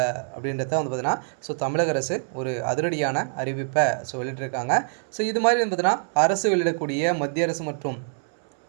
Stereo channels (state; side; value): silent; left; 62 dB below the other